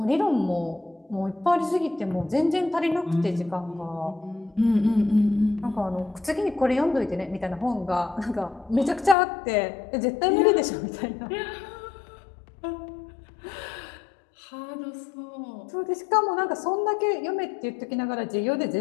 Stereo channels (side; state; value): right; drops out; at 9.2 s